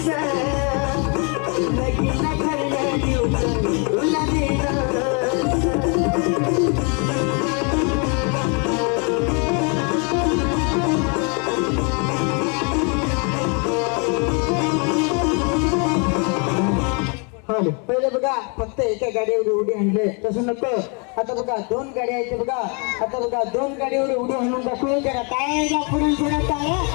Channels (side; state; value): right; quieter; 35.5 dB